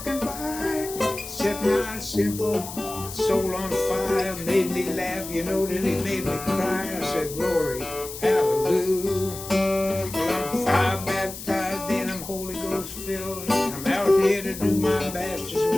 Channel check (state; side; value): noise; left; hiss, 11 dB below the sound